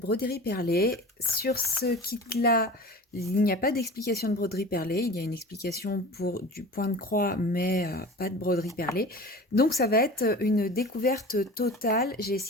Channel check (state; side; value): normal; both; correlation 0.37